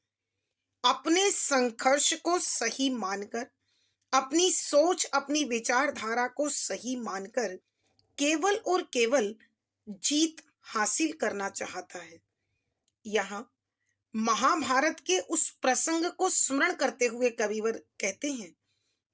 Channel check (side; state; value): both; identical; correlation 1.00